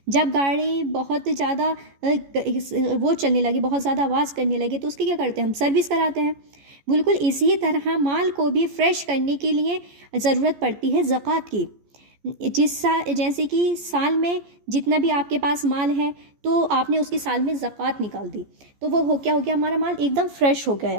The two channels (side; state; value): left; late; 14 ms